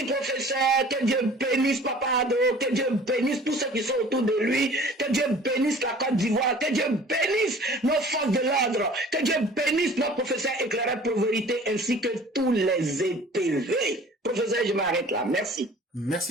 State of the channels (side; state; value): both; normal; correlation 0.48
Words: professeur. Que Dieu bénisse Papa Ado. Que Dieu bénisse tous ceux qui sont autour de lui. Que Dieu bénisse la Côte d'Ivoire. Que Dieu bénisse nos forces de l'ordre. Que Dieu bénisse nos professeurs éclairés pour vérité ainsi que tous les EPV. Professeur, je m'arrête là. Merci.